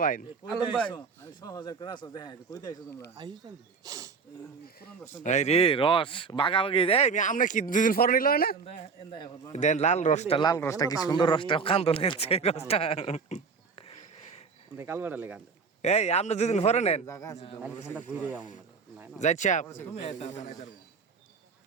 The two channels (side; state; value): left; quieter; 5.2 dB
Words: ভাই আলম ভাই আমি 6000 করে আসো দেখা কই দাইছো তোমরা আইছেন এই রে রস বাগাবাগি এই আমরা কি দুদিন পর নিল না এন্দা এখন দেন লাল রসটা কি সুন্দর রসটা কান্দো লাগছে রসটা কাল বাড়া লেগান এই আমরা দুদিন পরে নেন জায়গা আছে তো ঠান্ডা ঘুরে যাও না যাচ্ছি তুমি এটা